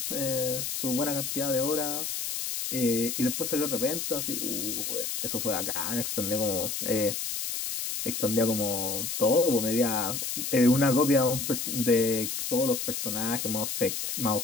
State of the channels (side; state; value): left; noise; hiss, 3 dB below the sound